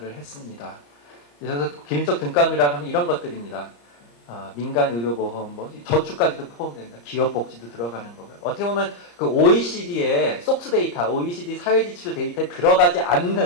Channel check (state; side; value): late; right; 34 ms